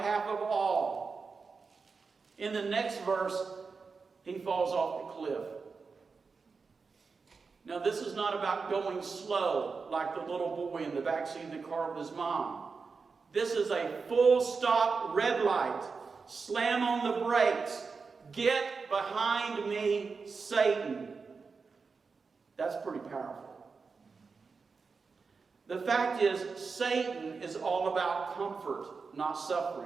of all. In the next verse, he falls off the cliff. Now, this is not about going slow like the little boy in the backseat of the car with his mom. This is a full stop red light. Slam on the brakes. Get behind me, Satan. That's pretty powerful. The fact is, Satan is all about comfort, not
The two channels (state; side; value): quieter; left; 4.8 dB